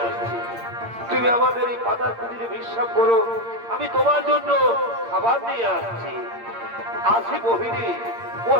আসছি। তুমি আমাদের এই পাতার কুটিরে বিশ্বাস করো, আমি তোমার জন্য খাবার নিয়ে আসছি। আসি মোহিনী,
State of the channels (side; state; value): left; late; 8.7 ms